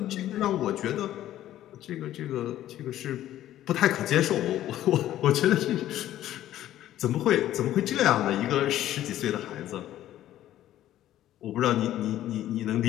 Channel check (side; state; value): right; quieter; 13.0 dB